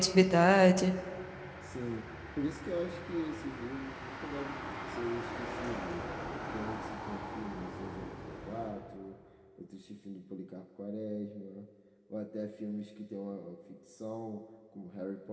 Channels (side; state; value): both; identical; correlation 1.00